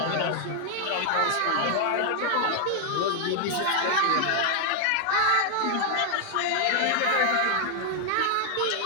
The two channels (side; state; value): both; different; correlation 0.00